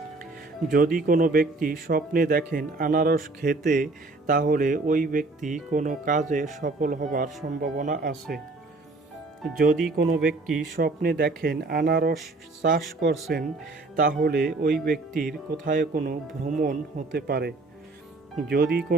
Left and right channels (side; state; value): left; quieter; 3.3 dB